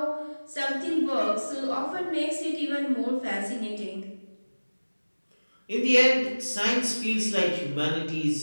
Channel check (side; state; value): both; inverted; correlation -1.00